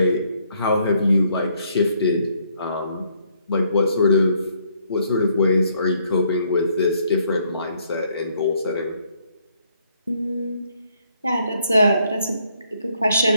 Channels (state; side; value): inverted; both; correlation -0.69